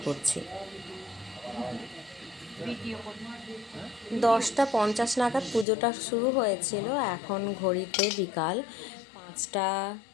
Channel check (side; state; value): right; drops out; at 5.7 s